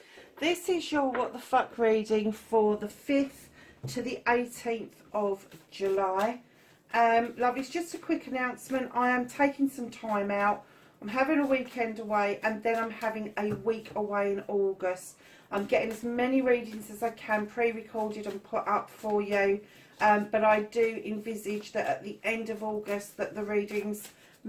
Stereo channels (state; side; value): identical; both; correlation 1.00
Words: This is your What the Fuck reading for the 5th to the 18th of July. Lovelies, just a quick announcement. I am taking some time out. I'm having a weekend away and then I'm having a week away in August. I'm getting as many readings as I can pre-recorded and put up for you. But I do envisage that at the end of August that the readings